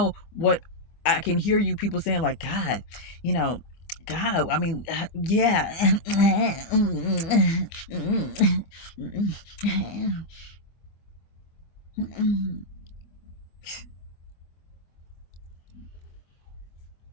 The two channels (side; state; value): right; late; 25 ms